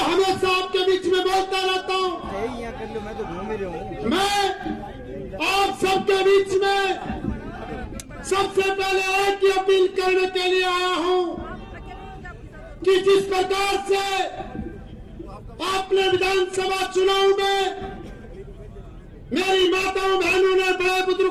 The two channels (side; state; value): both; identical; correlation 1.00